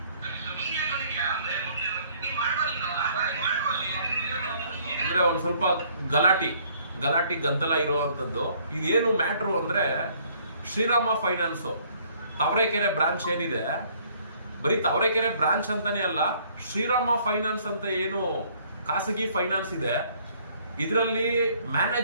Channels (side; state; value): both; inverted; correlation -0.61